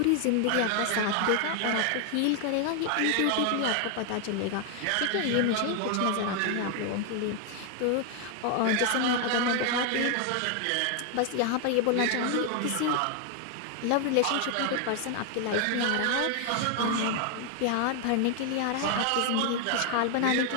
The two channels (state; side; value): different; both; correlation 0.00